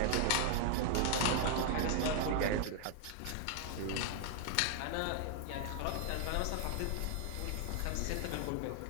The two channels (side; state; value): both; different; correlation 0.00